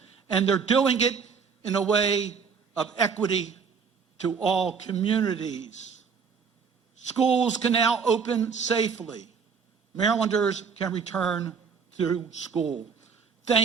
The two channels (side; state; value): left; quieter; 6.0 dB